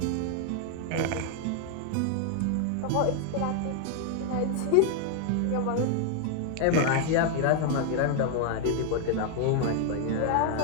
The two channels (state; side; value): different; both; correlation 0.00